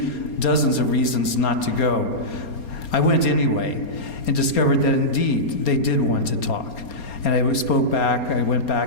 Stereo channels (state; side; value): late; right; 4.3 ms